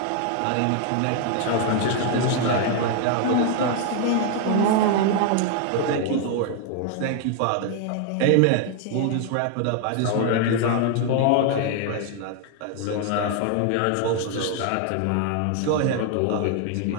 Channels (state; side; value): different; both; correlation 0.00